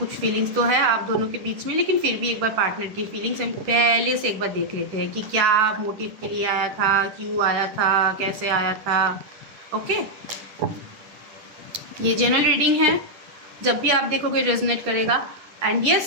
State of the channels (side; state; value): left; late; 10 ms